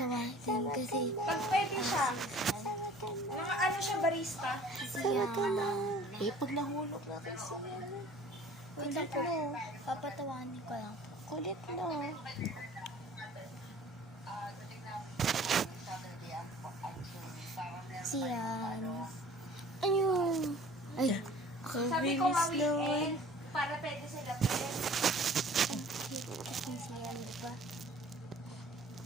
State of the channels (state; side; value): normal; both; correlation 0.48